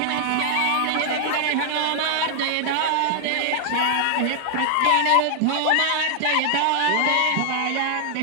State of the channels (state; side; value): different; both; correlation -0.01